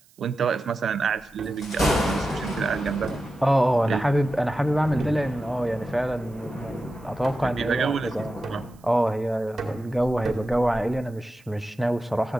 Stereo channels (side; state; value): right; noise; hiss, 30 dB below the sound